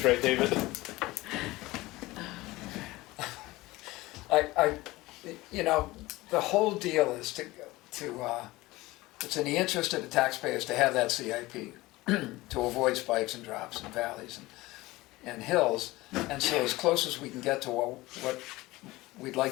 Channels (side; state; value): right; quieter; 19.6 dB